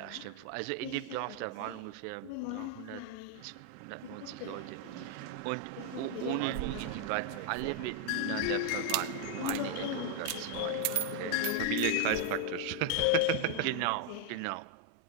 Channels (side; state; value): both; different; correlation 0.01